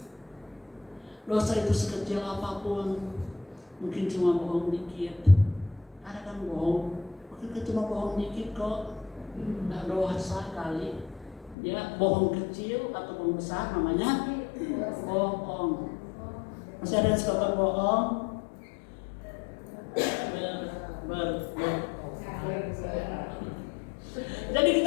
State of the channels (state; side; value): drops out; right; at 11.6 s